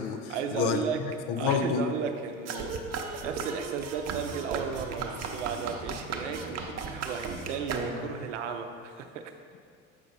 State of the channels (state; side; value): normal; both; correlation 0.19